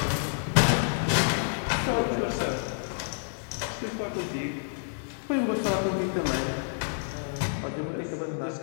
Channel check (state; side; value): silent; right; digital silence